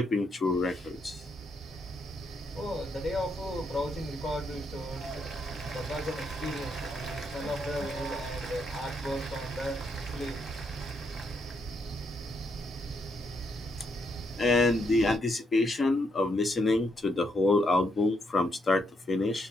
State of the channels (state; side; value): normal; both; correlation 0.77